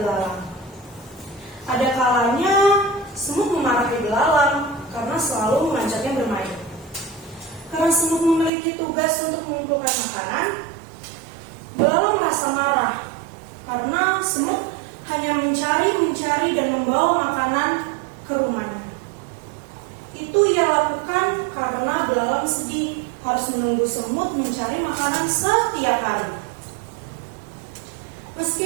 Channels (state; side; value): drops out; left; at 8.5 s